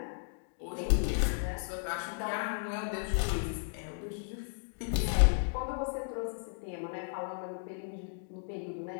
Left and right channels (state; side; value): silent; right; digital silence